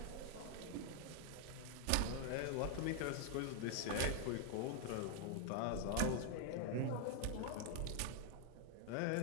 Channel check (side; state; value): both; different; correlation 0.00